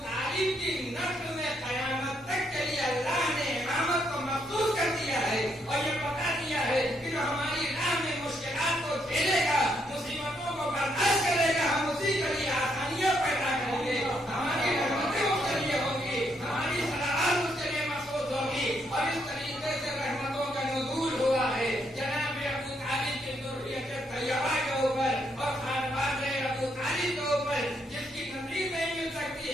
طالب کی نسل میں قیامت تک کے لیے اللہ نے امامت کو مخصوص کر دیا ہے اور یہ بتا دیا ہے کہ جو ہماری راہ میں مشکلات کو جھیلے گا, مصیبتوں کو برداشت کرے گا, ہم اسی کے لیے آسانیاں پیدا کریں گے. ہماری رحمتیں اس کے لیے ہوں گی, ہماری صلاحات اس کے لیے مخصوص ہوگی. اور اس طریقے سے رحمتوں کا نزول ہوا ہے جناب ابو طالب کی ذریت طیبہ کے اوپر اور خانواد ابو طالب کے اوپر جس کی نظیر نہیں مل سکتی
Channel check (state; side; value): normal; both; correlation 0.75